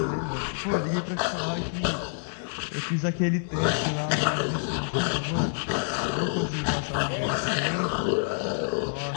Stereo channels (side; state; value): right; silent; digital silence